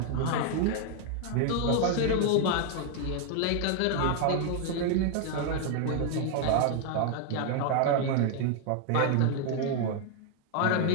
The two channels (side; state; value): both; different; correlation 0.00